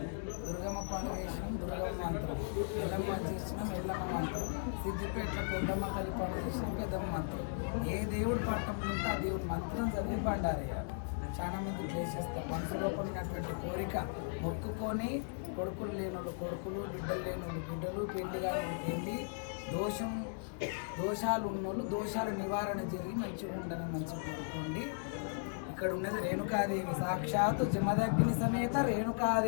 దుర్గమ్మ పండుగ చేసినాం దుర్గమ్మ మంత్రం, ఎల్లమ్మ చేసినాం ఎల్లమ్మ మంత్రం, సిద్దిపేటలో పెద్దమ్మ తల్లి పండుగ చేసినాం పెద్దమ్మ మంత్రం. ఏ దేవుడు పట్టం ఉంటే ఆ దేవుడు మంత్రం చదివి బండారేయాలి. చాలా మంది చేసేస్తారు. మనసు లోపల ఉన్నటువంటి కోరిక మొక్కుకొని కొడుకులు లేని వాళ్ళు కొడుకులు, బిడ్డలు లేని వాళ్ళు బిడ్డలు, పెళ్లి కాని పెళ్లి, దోషాలు ఉన్నోళ్ళు దోషాలు నివారణ జరిగి మంచిగా ఉండాలని మంచిగా కోరుకోండి. ఇక్కడ ఉన్నది రేణుకాదేవి, సాక్షాత్తు జమదగ్ని సమేత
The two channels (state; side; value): silent; right; 53 dB below the other